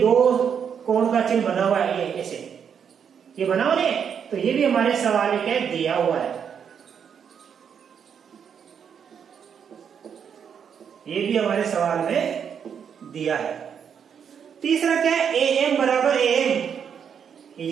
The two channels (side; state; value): left; quieter; 7.5 dB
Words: कोण का चिन्ह बना हुआ है, ये ऐसे ये बना हुआ है। तो ये भी हमारे सवाल में क्या दिया हुआ है, ये भी हमारे सवाल में दिया है। तीसरा क्या है, ए एम बराबर ए एम,